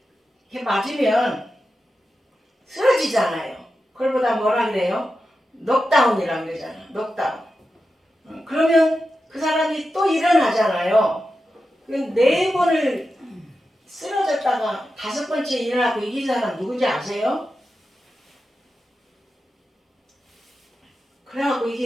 맞으면 쓰러지잖아요. 그걸보다 뭐라 그래요? 녹다운이라고 그러잖아. 녹다운. 그러면 그 사람이 또 일어나잖아요. 네 번을 쓰러졌다가 다섯 번째 일어나고 이긴 사람 누군지 아세요? 그래갖고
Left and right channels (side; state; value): both; normal; correlation 0.91